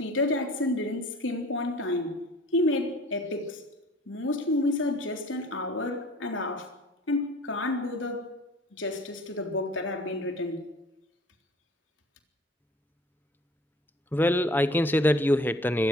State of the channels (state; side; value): normal; both; correlation 0.48